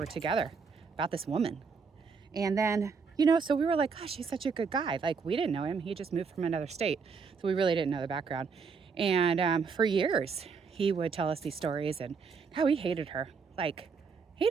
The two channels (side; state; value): left; quieter; 5.4 dB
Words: together about this woman. And then, so we were like, gosh, he's such a good guy. Like, we didn't know him. He just moved from another state. So we really didn't know the background. And for years, he would tell us these stories and how he hated her. Like,